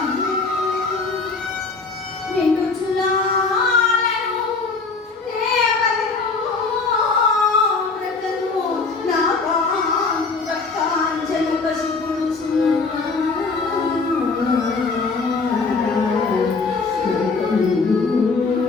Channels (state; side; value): quieter; right; 4.3 dB